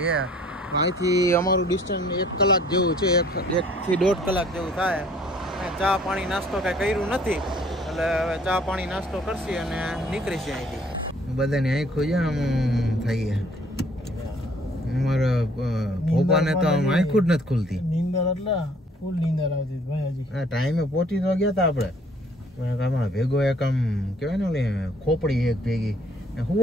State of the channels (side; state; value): both; normal; correlation 0.58